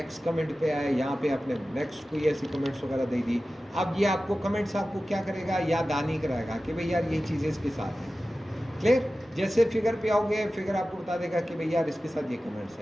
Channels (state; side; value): normal; both; correlation 0.95